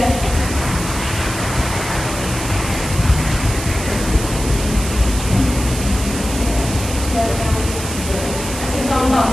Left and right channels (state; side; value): noise; right; hiss, 8 dB below the sound